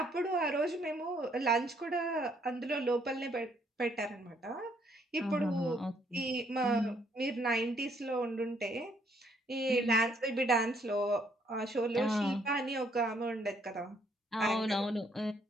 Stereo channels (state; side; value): normal; both; correlation 0.68